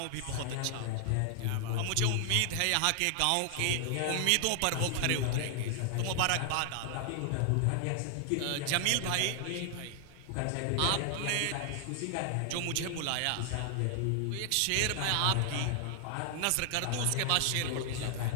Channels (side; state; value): both; different; correlation 0.00